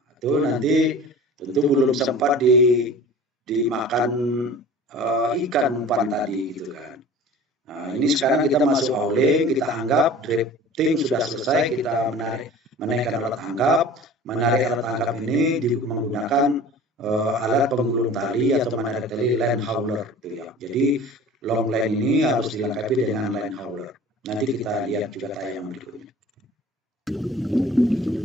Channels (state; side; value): normal; both; correlation 0.42